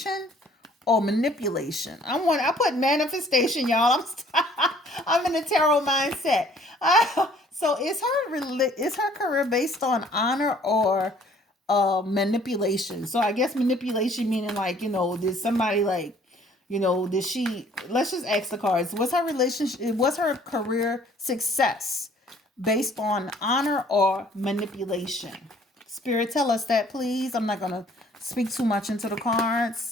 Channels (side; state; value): both; normal; correlation 0.58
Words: or manipulation? I put manifestation, y'all. I'm in a tarot mindset. So is her career based on honor or manipulation? So I guess manipulation meaning like, did somebody like, did she, let's just ask the cards, was her career success based on honor or manipulation? Spirit, tell us that, please. I'm not gonna speak too much into the